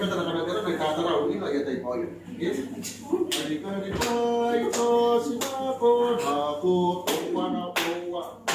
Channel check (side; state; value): both; identical; correlation 1.00